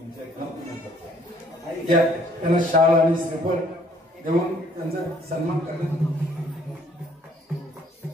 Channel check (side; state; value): both; normal; correlation 0.61